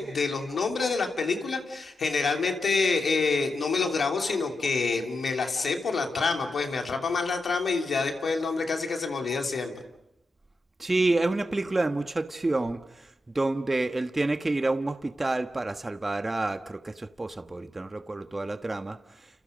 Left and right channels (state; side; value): normal; both; correlation 0.88